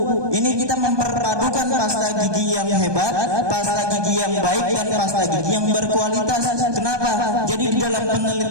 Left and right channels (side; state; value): left; late; 1.2 ms